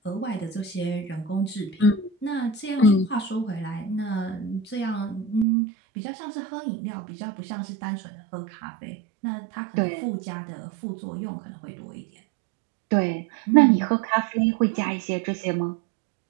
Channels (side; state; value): left; drops out; at 5.5 s